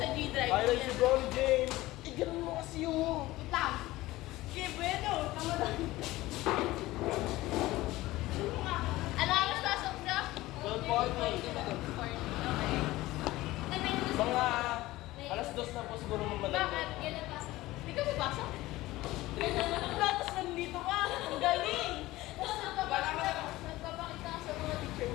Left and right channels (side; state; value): right; quieter; 17.9 dB